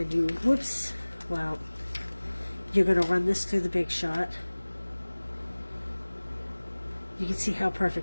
you, whoops, well, you're going to run this through the Big Shot. You can see how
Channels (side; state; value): both; inverted; correlation -1.00